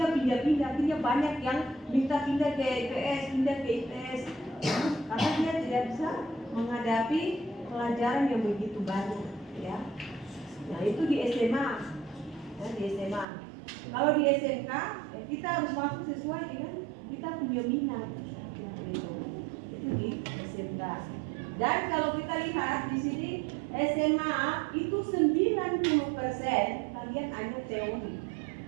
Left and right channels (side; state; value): left; drops out; at 13.2 s